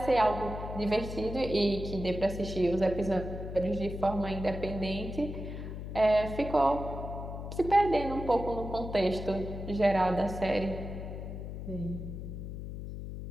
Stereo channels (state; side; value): noise; left; hum, 8 dB below the sound